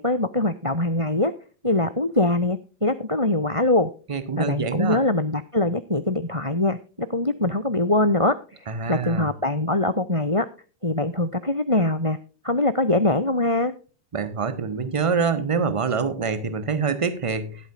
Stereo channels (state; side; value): late; left; 1.5 ms